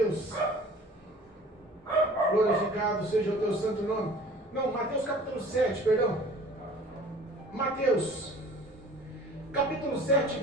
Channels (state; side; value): normal; both; correlation 0.47